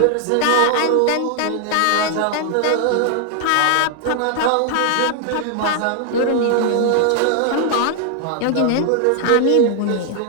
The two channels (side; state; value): both; different; correlation 0.00